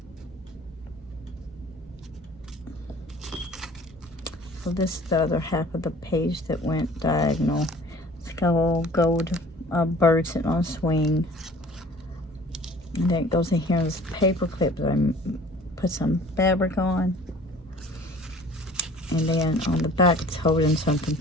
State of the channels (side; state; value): both; normal; correlation 0.49